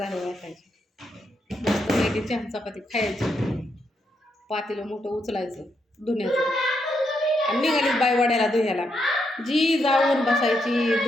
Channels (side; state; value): both; normal; correlation 0.80